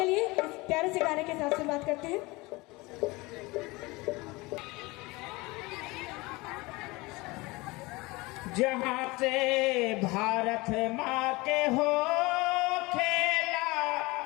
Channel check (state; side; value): quieter; right; 23.2 dB